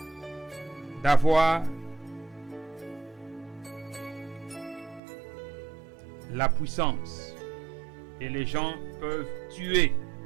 d'avoir la puissance. Et les gens peuvent tuer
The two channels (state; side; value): drops out; left; at 5.0 s